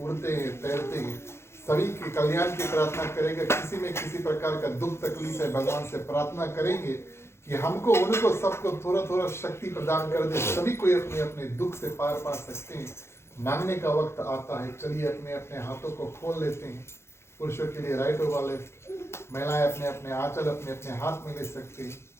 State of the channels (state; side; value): late; right; 0.13 ms